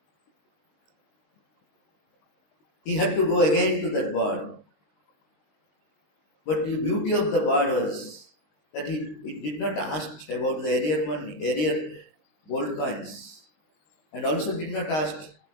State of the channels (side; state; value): right; late; 19 ms